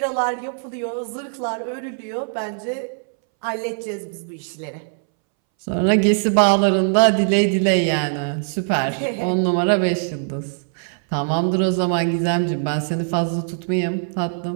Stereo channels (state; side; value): silent; left; 63 dB below the other